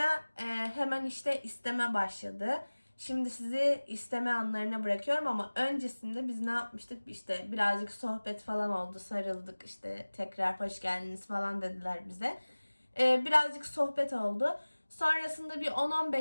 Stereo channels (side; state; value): both; inverted; correlation -1.00